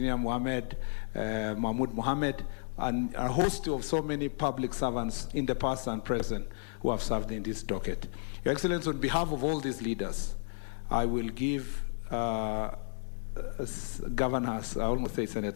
Mahmoud Mohammed, and a host of so many public servants in the past and present who have served in this docket. Your Excellency, on behalf of all these leaders, I will give Governors, I almost say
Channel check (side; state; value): right; silent; digital silence